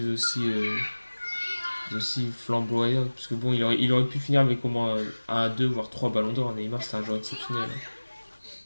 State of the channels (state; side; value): inverted; both; correlation -1.00